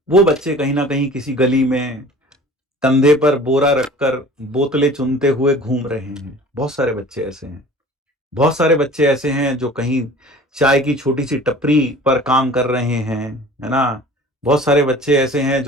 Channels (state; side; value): normal; both; correlation 0.45